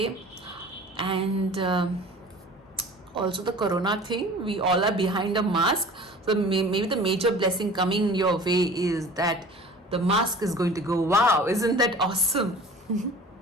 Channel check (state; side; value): normal; both; correlation 0.43